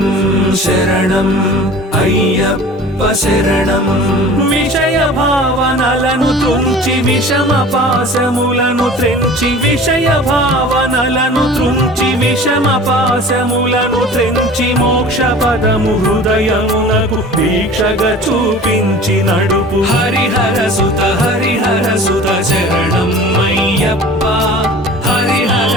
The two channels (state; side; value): normal; both; correlation 0.42